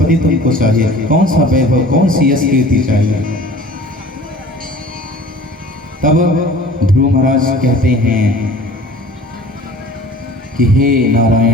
तुमको चाहिए, कौन सा वैभव, कौन सी यश कीर्ति चाहिए। तब ध्रुव महाराज कहते हैं कि हे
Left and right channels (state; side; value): normal; both; correlation 0.45